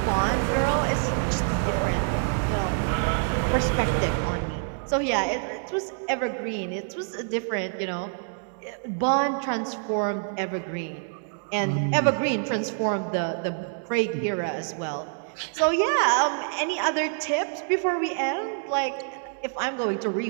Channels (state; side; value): silent; left; 61 dB below the other